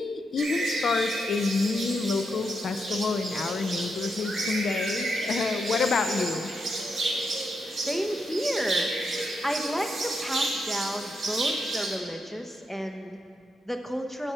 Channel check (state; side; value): normal; both; correlation 0.83